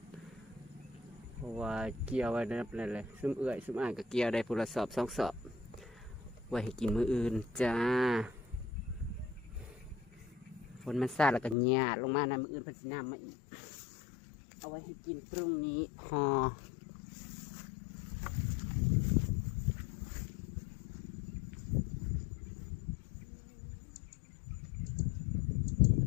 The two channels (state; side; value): drops out; right; at 11.6 s